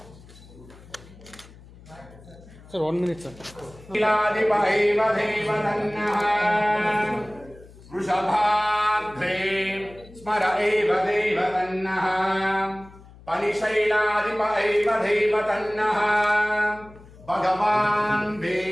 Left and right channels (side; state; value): left; noise; hum, 21 dB below the sound